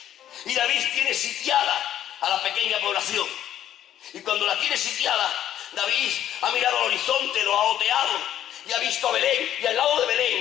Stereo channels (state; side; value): quieter; right; 11.3 dB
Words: Y David tiene sitiada a la pequeña población. Y cuando la tiene sitiada, David ha mirado al horizonte, lo ha oteado y ha visto a Belén. Y al lado de